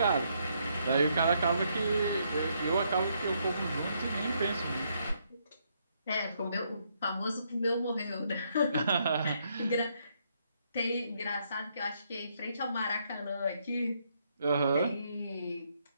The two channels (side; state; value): both; inverted; correlation -0.74